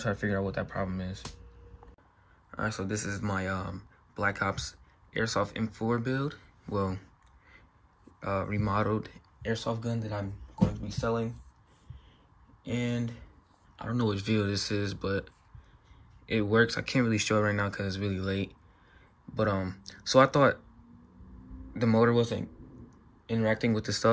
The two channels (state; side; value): identical; both; correlation 1.00